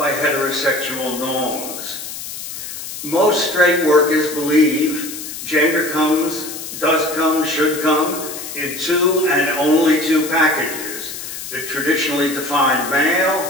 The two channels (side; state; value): left; noise; hiss, 9 dB below the sound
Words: heterosexual norms. Most straight workers believe gender does come, should come in two and only two packages, the traditionally defined